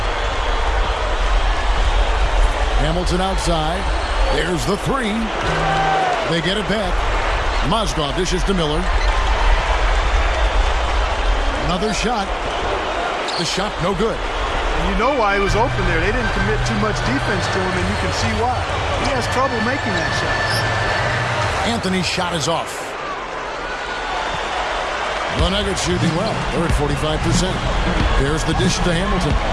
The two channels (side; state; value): both; identical; correlation 1.00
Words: Hamilton outside. There's the three. They get it back. Mozgov dishes to Miller. Another shot. The shot no good. And you know why he was open there. They didn't commit too much defense to him, and you can see why. He has trouble making that shot. Anthony's shot is off. The Nuggets shooting well. They're at 45%. There's the dish to Hamilton.